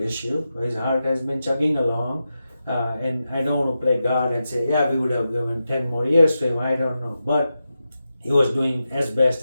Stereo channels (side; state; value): both; inverted; correlation -0.90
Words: issue. His heart has been chugging along, and I don't want to play God and say, we would have given 10 more years to him, I don't know. But he was doing as